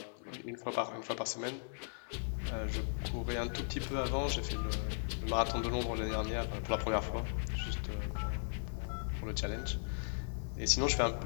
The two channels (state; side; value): silent; right; 53 dB below the other